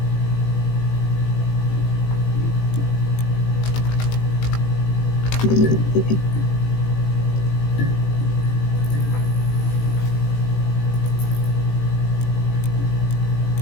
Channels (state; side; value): late; right; 18 ms